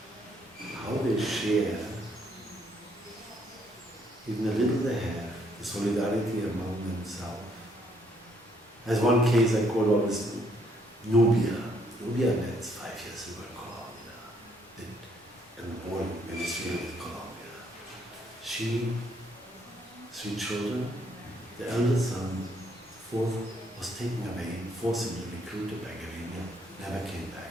how they share, even the little they have, the solidarity among themselves. As one case I call out is Nubia. Nubia met 5 years ago in Colombia, and born in Venezuela with Colombia. She, 3 children, the eldest son, fourth, was taken away, forcibly recruited by guerrilla, never came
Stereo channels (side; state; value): both; normal; correlation 0.69